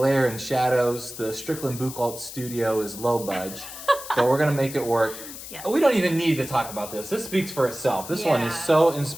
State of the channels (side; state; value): left; noise; hiss, 12 dB below the sound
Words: and shadows. The Strickland Buchholz studio is low budge, but we're going to make it work. Yes. We don't even need to talk about this. This speaks for itself. This one is Yeah. so